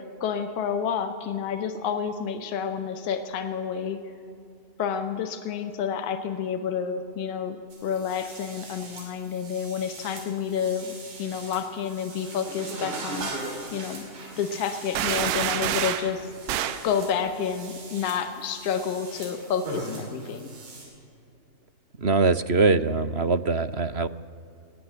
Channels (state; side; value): late; left; 2.8 ms